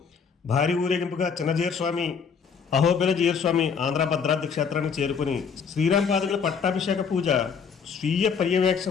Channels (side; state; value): right; quieter; 6.3 dB